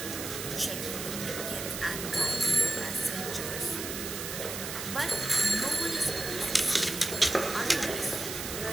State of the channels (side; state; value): right; noise; hiss, 6 dB below the sound